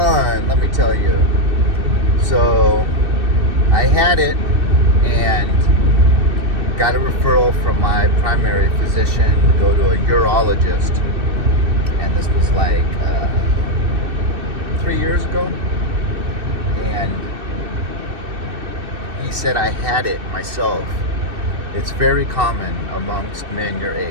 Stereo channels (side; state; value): left; late; 2.6 ms